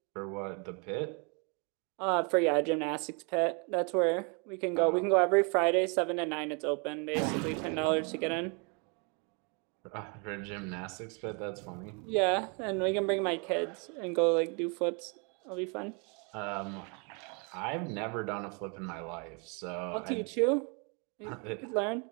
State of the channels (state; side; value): quieter; left; 34.4 dB